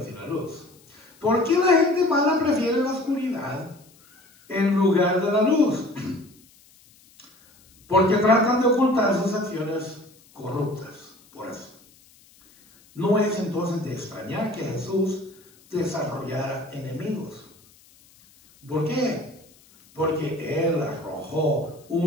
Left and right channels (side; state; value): left; noise; hiss, 28 dB below the sound